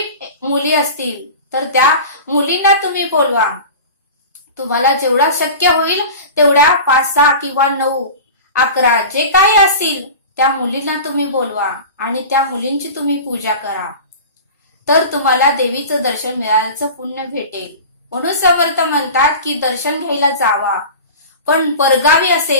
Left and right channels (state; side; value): inverted; both; correlation -0.34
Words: मुली असतील तर त्या मुलींना तुम्ही बोलवा. तुम्हाला जेवढा शक्य होईल तेवढ्या 5, 6 किंवा 9, 11 जे काही असतील त्या मुलींना तुम्ही बोलवा आणि त्या मुलींची तुम्ही पूजा करा. तर तुम्हाला देवीचं दर्शन मिळाल्याचं पुण्य भेटेल. म्हणून समर्थ म्हणतात की दर्शन घ्यायला जावा. पण परगावी